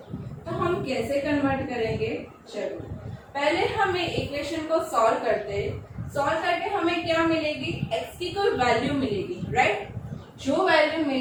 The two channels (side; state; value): both; identical; correlation 1.00